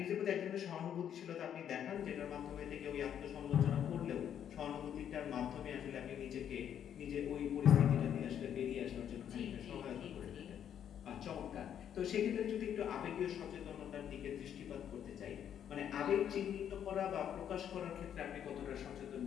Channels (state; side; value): quieter; right; 9.4 dB